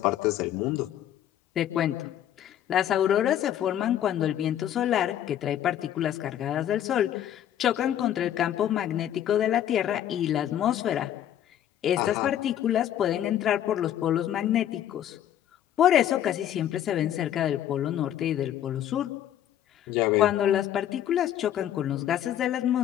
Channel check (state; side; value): quieter; right; 11.1 dB